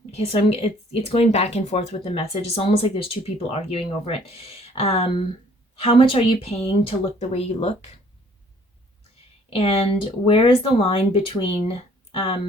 Okay, so it's going back and forth with the message. It's almost like there's 2 people arguing over it. How much are you paying to look the way you look? And where is the line between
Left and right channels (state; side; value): normal; both; correlation 0.59